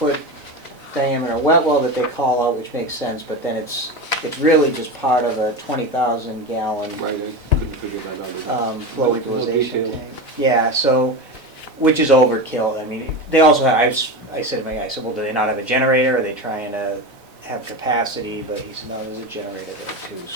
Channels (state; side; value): late; left; 4.0 ms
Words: diameter wet well that they call out, which makes sense, but then it's really just part of a 20,000 gallon Right, I couldn't figure that out either. flow No equalization detail. tank. Yeah, so, which is overkill. I mean, they also have, I said to my guy, I said, well, do they not have a generator? Are they trying to have capacity? But he said, no, there's a generator there too.